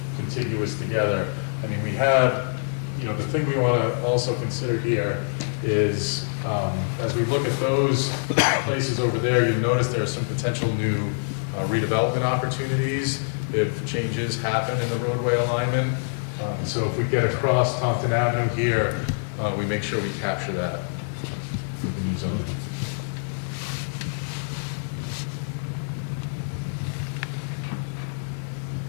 contiguous together. I mean, we have, the thing we want to also consider here is, as we look at those places over there, you'll notice there are some potential new redevelopment opportunities if changes happen in the roadway alignment. So if we get across Taunton Avenue here, we make sure we capture that with the new zoning.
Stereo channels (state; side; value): silent; right; digital silence